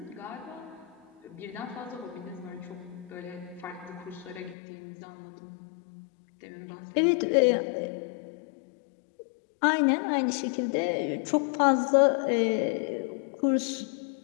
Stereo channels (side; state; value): right; drops out; at 4.5 s